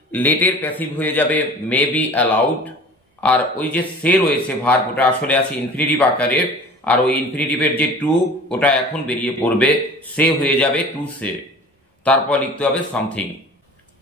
লেটের প্যাসিভ হয়ে যাবে মে বি অ্যালাউড, আর ওই যে সে রয়েছে ভার্ব ওটা আসলে আছে ইনফিনিটিভ আকারের, আর ওই ইনফিনিটিভের যে টু ওটা এখন বেরিয়ে পড়বে, সে হয়ে যাবে টু সে, তারপর লিখতে হবে something.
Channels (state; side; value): normal; both; correlation 0.42